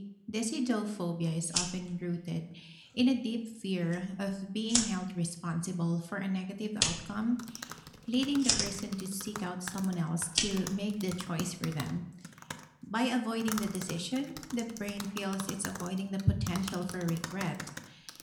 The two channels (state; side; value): identical; both; correlation 1.00